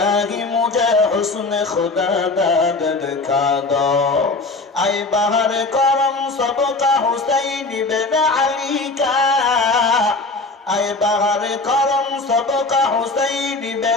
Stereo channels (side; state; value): right; quieter; 3.4 dB